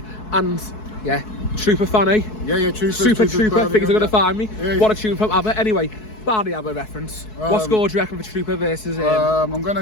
And yeah, Trooper fan, eh? Yeah, Trooper. Super Trooper. Think he's going to find me. Yeah. What a tune from ABBA. Anyway, Barney ABBA reference. What score do you reckon for Trooper versus I'm going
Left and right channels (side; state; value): right; late; 4.6 ms